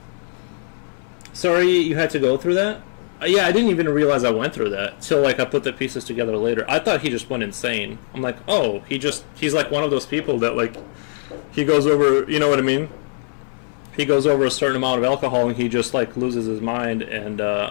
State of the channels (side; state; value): right; silent; 64 dB below the other